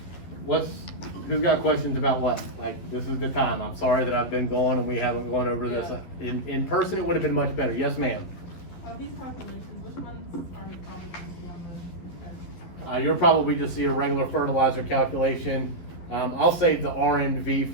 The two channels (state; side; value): late; right; 12 ms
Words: No. Who's got questions about what? Like, this is the time. I'm sorry that I've been gone and we haven't gone over this. In person, it would have been much better. Yes, ma'am. These calculations, which ones are we probably going to see on the test? You'll probably just see a regular fertilizer calculation. I'll save the R&V